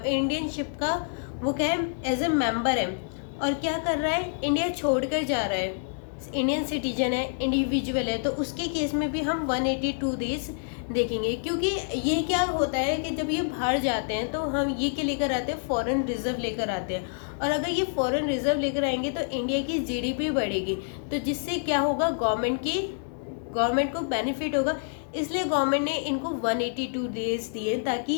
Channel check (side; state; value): right; silent; 60 dB below the other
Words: इंडियन शिप का वो क्या है, एज ए मेंबर है, और क्या कर रहा है, इंडिया छोड़कर जा रहा है, इंडियन सिटीजन है, इंडिविजुअल है, तो उसके केस में भी हम 182 डेज देखेंगे। क्योंकि ये क्या होता है कि जब ये बाहर जाते हैं तो हम ये क्या लेकर आते हैं, फॉरेन रिजर्व लेकर आते हैं, और अगर ये फॉरेन रिजर्व लेकर आएंगे तो इंडिया की जीडीपी बढ़ेगी, तो जिससे क्या होगा, गवर्नमेंट को बेनिफिट होगा। इसलिए गवर्नमेंट ने इनको 182 डेज दिए